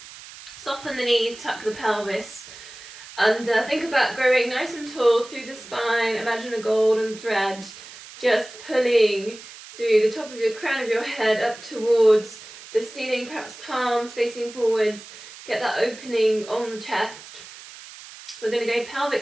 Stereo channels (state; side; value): noise; right; hiss, 17 dB below the sound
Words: Soften the knees, tuck the pelvis. And think about growing nice and tall through the spine. Imagine a golden thread just pulling through the top of your crown of your head up towards the ceiling, perhaps palms facing forwards. Get that opening on the chest. We're going to go